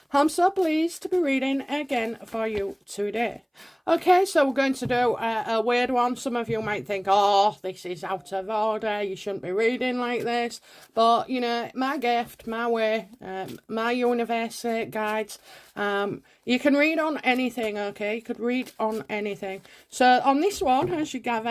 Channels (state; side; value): identical; both; correlation 1.00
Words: I'm so pleased to be reading again for you today. Okay, so we're going to do a weird one. Some of you might think, oh, this is out of order, you shouldn't be reading like this. But, you know, my gift, my way, my universe guides. You can read on anything, okay? You could read on anything. So on this one, as you